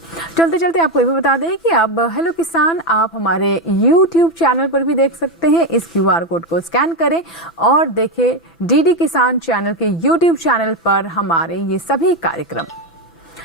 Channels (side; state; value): both; normal; correlation 0.10